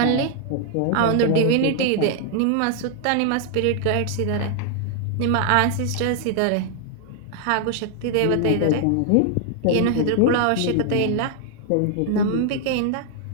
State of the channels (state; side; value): different; both; correlation 0.00